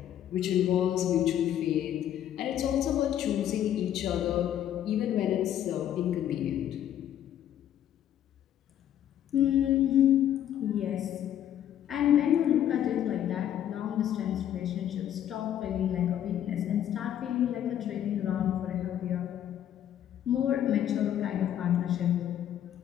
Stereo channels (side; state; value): right; quieter; 10.8 dB